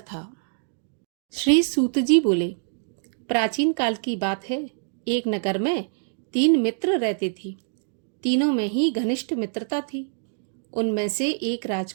श्री सूत जी बोले, प्राचीन काल की बात है। एक नगर में 3 मित्र रहते थे। तीनों में ही घनिष्ठ मित्रता थी। उनमें से एक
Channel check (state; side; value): silent; left; digital silence